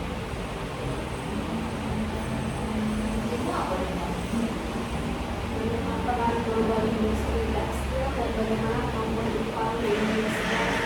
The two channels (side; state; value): both; identical; correlation 1.00